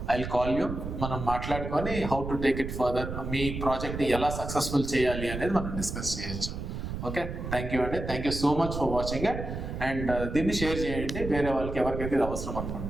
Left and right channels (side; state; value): right; noise; rumble, 6 dB below the sound